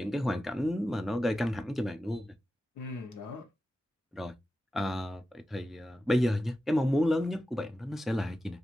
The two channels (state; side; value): normal; both; correlation 0.93